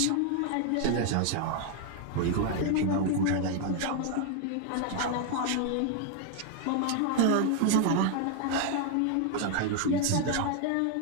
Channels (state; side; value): different; both; correlation 0.00